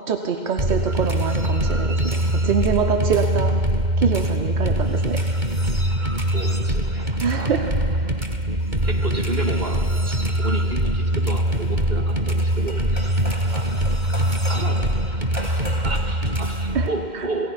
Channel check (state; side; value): late; left; 2.1 ms